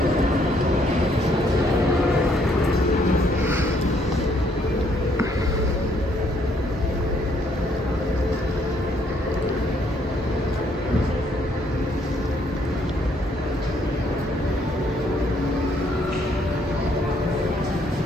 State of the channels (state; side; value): normal; both; correlation 0.68